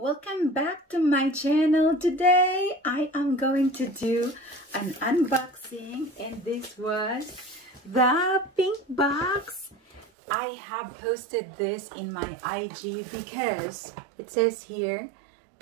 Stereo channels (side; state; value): left; drops out; at 10.1 s